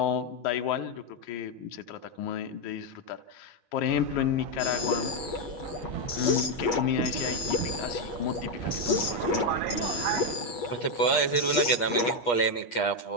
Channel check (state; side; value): late; right; 8.4 ms